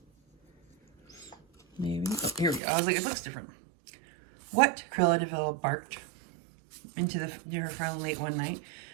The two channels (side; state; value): left; drops out; at 2.6 s